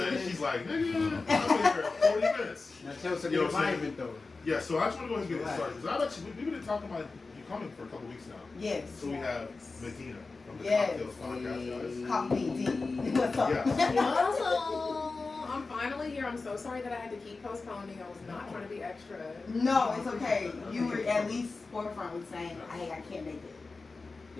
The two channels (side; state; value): right; quieter; 3.9 dB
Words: She's like, nigga, I'm here 40 minutes. Now tell us about the environment though. Yeah, so I just want to go ahead and get it started because we've been talking about you coming for a couple weeks now. Yes. So we have Medinah from the Yes. CockTales podcast, guys. Copy D. What's up? Yes. I'm finally here. I'm so sorry that I had to keep postponing. I was not trying to be extra. No, it's okay. You were at least forefront with saying, "Hey, I can't make it."